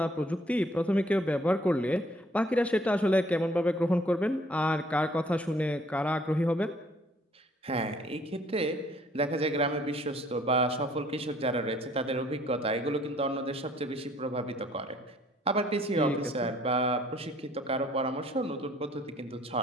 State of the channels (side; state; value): both; normal; correlation 0.60